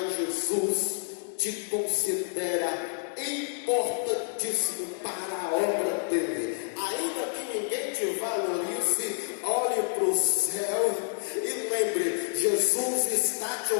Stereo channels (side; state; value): right; silent; 59 dB below the other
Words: Jesus te considera importantíssimo para a obra dele. Ainda que ninguém te valorize, olhe para o céu e lembre: Jesus está te